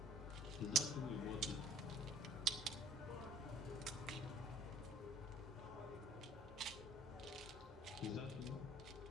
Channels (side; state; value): both; normal; correlation 0.54